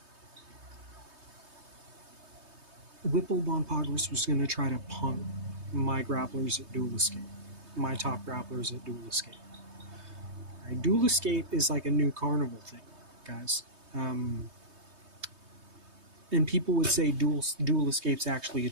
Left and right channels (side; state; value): left; late; 3.2 ms